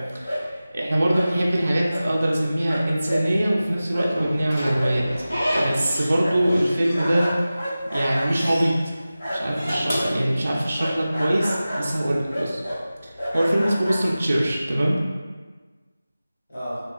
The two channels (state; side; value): inverted; both; correlation -0.96